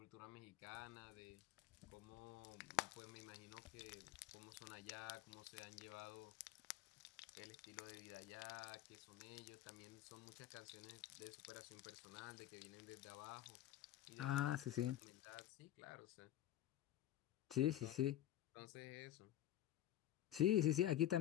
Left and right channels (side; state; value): right; quieter; 12.7 dB